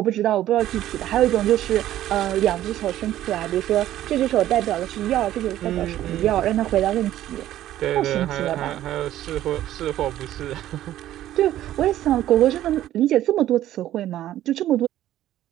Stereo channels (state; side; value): quieter; left; 13.2 dB